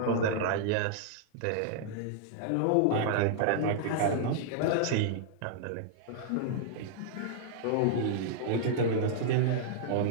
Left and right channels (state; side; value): different; both; correlation -0.01